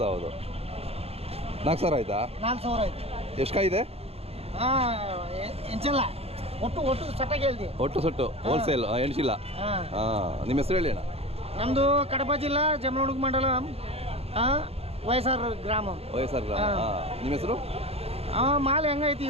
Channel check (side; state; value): left; late; 0.29 ms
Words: 4,000 ಆಯ್ತಾ? 4,000 ಐತಿ. ಎಷ್ಟು ಕಾಯಿ ಇದೆ? ಎಂಚಲ್ಲ ಒಟ್ಟು ಸಟ್ಟಾಗಿ ಹೇಳ್ತಿ. ಒಟ್ಟು ಸೊಟ್ಟು ಹೋಲ್ಸೇಲ್ ಎಣ್ಸಿಲ್ಲ. ಹಾಂ ನಿಮ್ಮ ಹೆಸರು ಹೇಳಿ ಅಣ್ಣ. ನಮ್ಮದು ಕಡಪ ಜಿಲ್ಲಾ ಜಮಲಮಡುಗು ಮಂಡಲ ವಯಸ್ಸಾರ ಗ್ರಾಮ. ವಯಸ್ಸಾರ ಗ್ರಾಮ. ಹಾಂ ನಿಮ್ಮ ಹೆಸರು? ಮಾಲ್ ಹೆಂಗೈತಿ